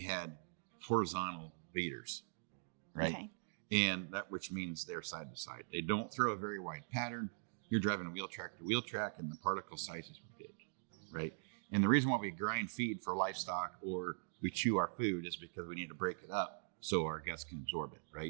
horizontal leaders, right? Okay. And that, which means they're side to side. They don't throw a very wide pattern. You're driving wheel track to wheel track, and the particle sizes were big, right? And the reason why we grind feed for livestock or we chew our food is because we need to break it up so our guts can absorb it,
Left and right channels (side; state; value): left; silent; digital silence